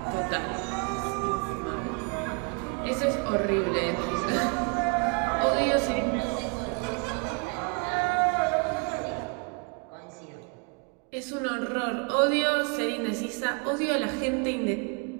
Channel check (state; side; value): quieter; left; 33.9 dB